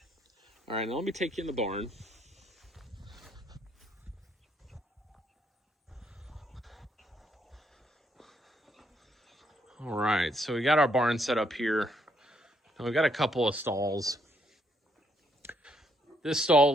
All right, now let me take you in the barn. All right, so we got our barn set up here. And we've got a couple of stalls. This stall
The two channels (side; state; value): both; normal; correlation 0.72